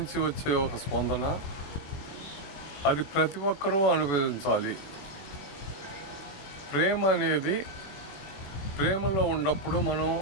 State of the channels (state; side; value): late; right; 21 ms